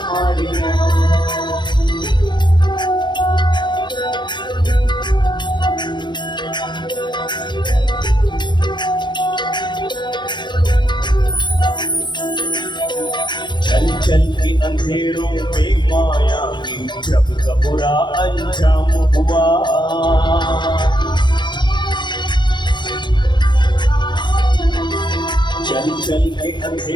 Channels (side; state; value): right; late; 0.22 ms